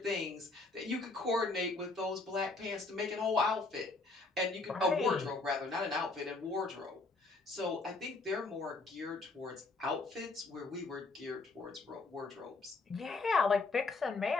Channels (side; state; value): right; quieter; 3.6 dB